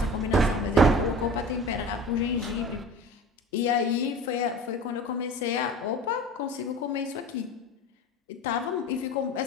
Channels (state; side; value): normal; both; correlation 0.38